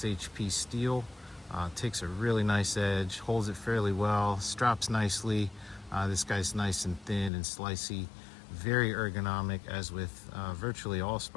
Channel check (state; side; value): drops out; right; at 7.3 s